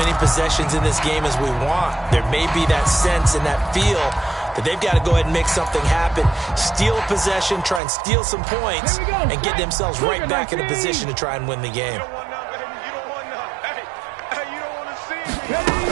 possessions in this game as we want. There may be that sense and that feel that they've got to go ahead and make something happen, steal a possession, try and steal some points, and get themselves right back in a position to try and win the game.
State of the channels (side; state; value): left; drops out; at 7.8 s